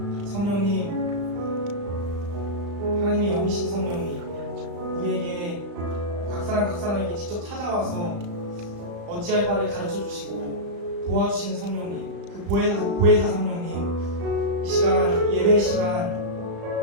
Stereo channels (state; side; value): late; left; 35 ms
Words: 성령님, 하나님의 영이신 성령님, 우리에게 각 사람에게 직접 찾아와서 어찌할 바를 가르쳐 주시고 도와주시는 성령님, 그 보혜사 성령님, 이 시간 예배